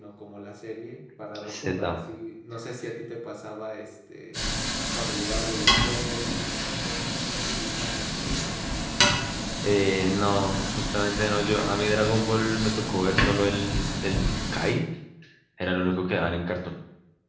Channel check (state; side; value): identical; both; correlation 1.00